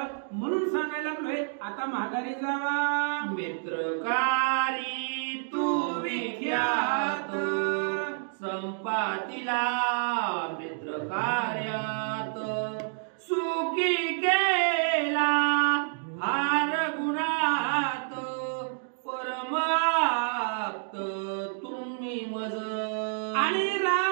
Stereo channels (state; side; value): silent; left; digital silence